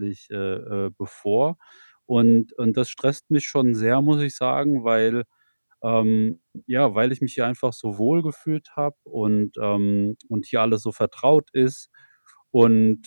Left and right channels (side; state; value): both; inverted; correlation -1.00